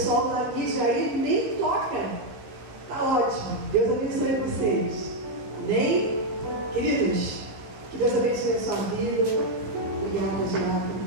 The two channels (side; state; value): left; late; 15 ms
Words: da mídia aí nem toca. Tá ótimo, Deus abençoe vocês. Amém? Queridos, que Deus abençoe a sua vida. Obrigada.